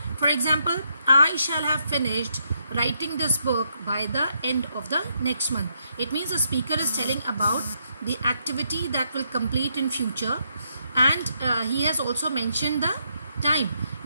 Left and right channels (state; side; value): inverted; both; correlation -0.78